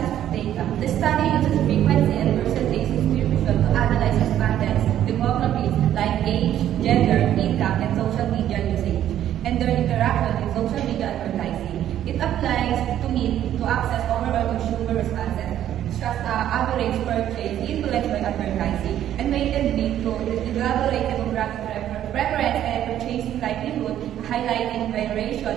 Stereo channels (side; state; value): left; quieter; 11.4 dB